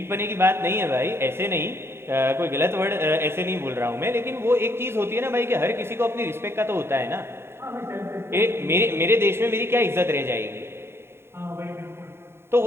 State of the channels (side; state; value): left; late; 0.12 ms